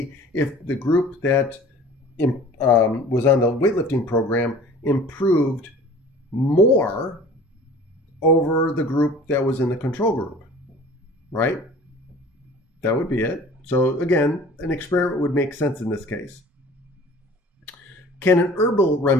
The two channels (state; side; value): normal; both; correlation 0.46